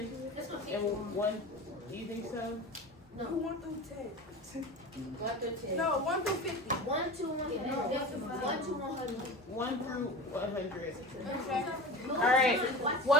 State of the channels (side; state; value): both; normal; correlation 0.32